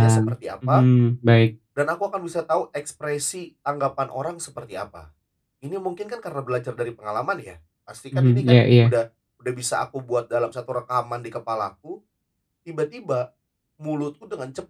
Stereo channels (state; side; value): identical; both; correlation 1.00